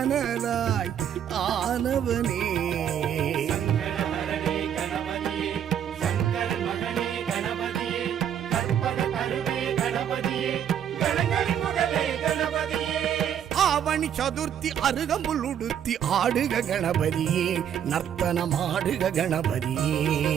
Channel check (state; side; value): quieter; left; 9.3 dB